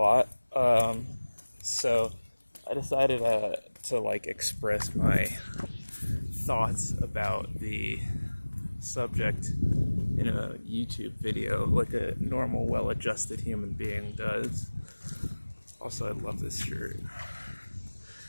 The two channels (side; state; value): both; inverted; correlation -1.00